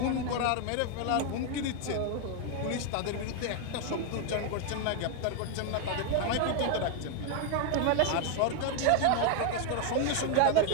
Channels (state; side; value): different; both; correlation 0.01